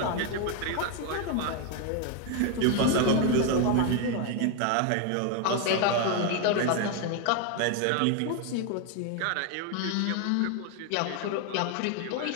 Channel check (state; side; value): different; both; correlation 0.01